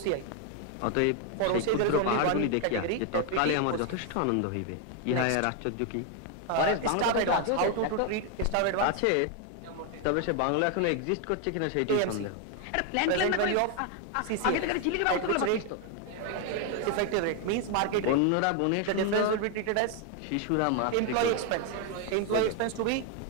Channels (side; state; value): both; different; correlation 0.01